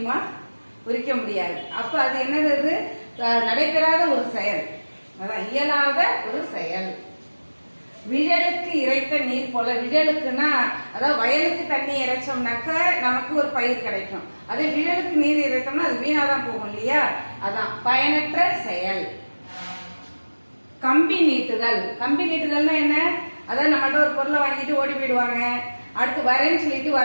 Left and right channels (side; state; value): both; inverted; correlation -1.00